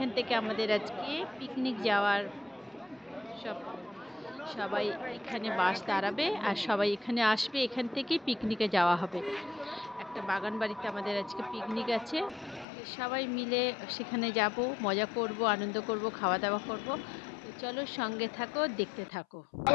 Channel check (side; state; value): right; drops out; at 12.7 s